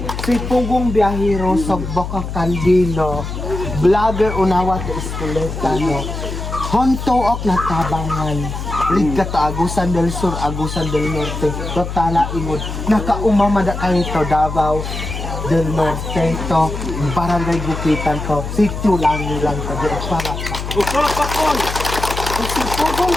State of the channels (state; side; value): noise; left; hum, 6 dB below the sound